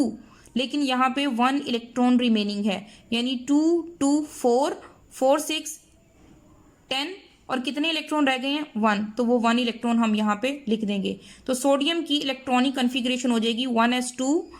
लेकिन यहाँ पे 1 इलेक्ट्रॉन रिमेनिंग है, यानी 2 2 4 4 6 10, और कितने इलेक्ट्रॉन रह गए हैं, 1, तो वो 1 इलेक्ट्रॉन हम यहाँ पे लिख देंगे। तो सोडियम की इलेक्ट्रॉनिक कन्फिग्रेशन हो जाएगी 1s2,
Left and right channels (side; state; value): both; identical; correlation 1.00